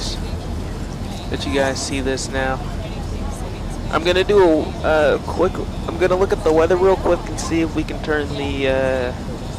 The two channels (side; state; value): both; identical; correlation 1.00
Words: Let you guys see this now. I'm gonna do a quick. I'm gonna look at the weather real quick and see if we can turn the